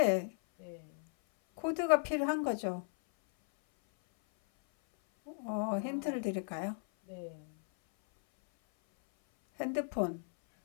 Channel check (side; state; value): right; silent; 54 dB below the other